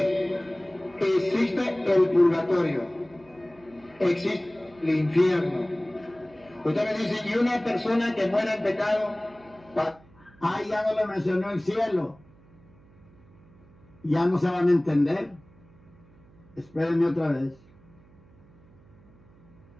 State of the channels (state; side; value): noise; right; hum, 27 dB below the sound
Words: Existe el purgatorio, existe el infierno. Usted me dice, ¿y una persona que muera en pecado? Ya no le mencionó el cielo. Ya no se van a entender. Espérenme otra vez.